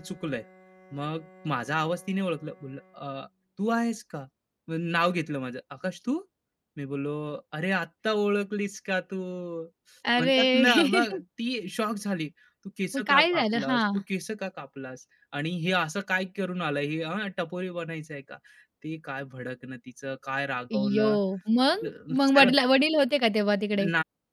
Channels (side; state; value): both; identical; correlation 1.00